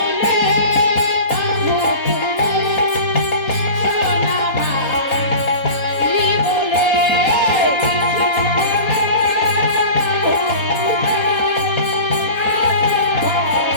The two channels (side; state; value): right; late; 3.9 ms